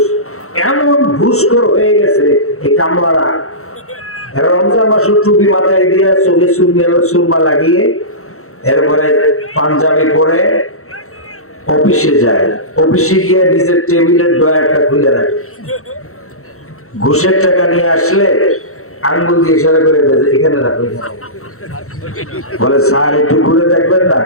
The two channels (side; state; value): right; late; 0.63 ms